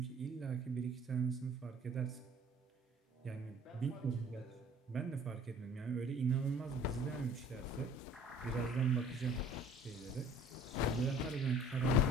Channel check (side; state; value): both; normal; correlation 0.51